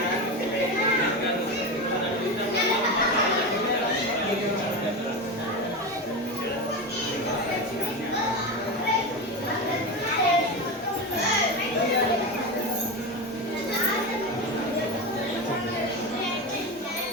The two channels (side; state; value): both; normal; correlation 0.20